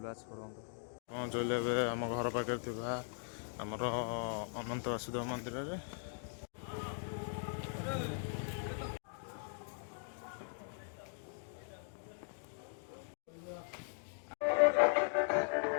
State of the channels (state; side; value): silent; right; digital silence